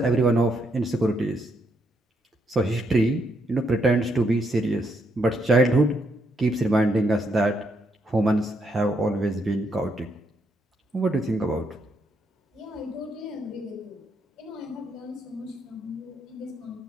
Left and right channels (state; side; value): normal; both; correlation 0.76